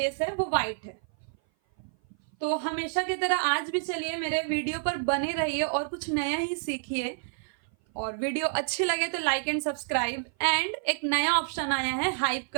है वो व्हाइट है। तो हमेशा की तरह आज भी चलिए मेरे वीडियो पर बने रहिए और कुछ नया ही सीखिए। और वीडियो अच्छी लगे तो लाइक एंड सब्सक्राइब, एंड एक नया ऑप्शन आया है हाइप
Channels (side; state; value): left; silent; 56 dB below the other